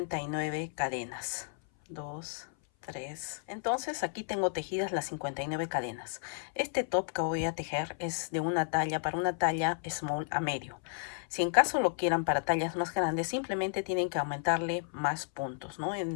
cadenas. 2, 3. Entonces aquí tengo tejidas las 59 cadenas. Este top que voy a tejer es de una talla, para una talla small a medio. Si en caso lo quieran para tallas más grandes, simplemente tienen que aumentarle más puntos, ¿no?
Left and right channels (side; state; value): right; silent; 56 dB below the other